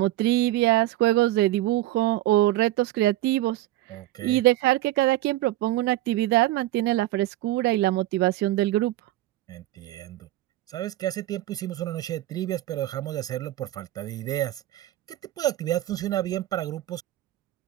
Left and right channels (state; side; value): quieter; left; 15.5 dB